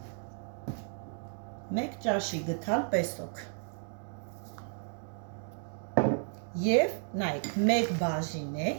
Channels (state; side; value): silent; left; 55 dB below the other